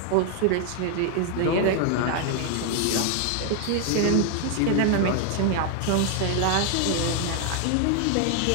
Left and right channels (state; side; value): different; both; correlation 0.00